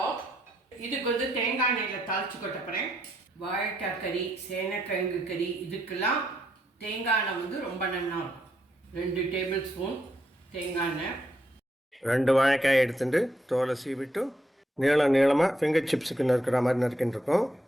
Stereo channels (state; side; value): normal; both; correlation 0.77